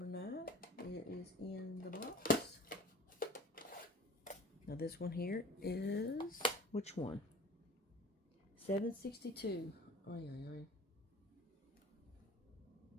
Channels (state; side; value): normal; both; correlation 0.42